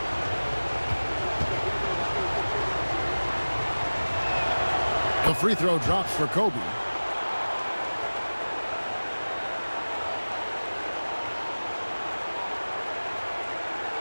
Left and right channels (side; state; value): both; inverted; correlation -1.00